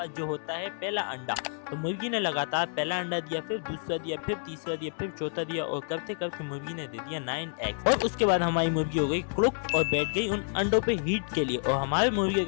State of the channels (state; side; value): silent; right; 58 dB below the other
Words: जो होता है पहला अंडा, तो मुर्गी ने लगातार पहला अंडा दिया, फिर दूसरा दिया, फिर तीसरा दिया, फिर चौथा दिया और करते करते मुर्गी ने दे दिया 9 एग्स। और उसके बाद हमारी मुर्गी हो गई क्रुक और बैठ गई उन अंडों पे हीट के लिए और हमारे मुर्गे